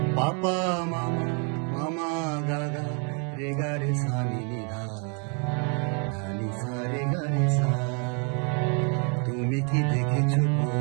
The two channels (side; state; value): left; quieter; 37.7 dB